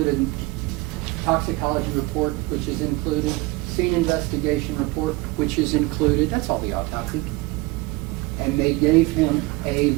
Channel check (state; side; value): quieter; left; 22.2 dB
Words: in toxicology report, which is included, scene investigation report, which is included. That's all the autopsy. And they gave him a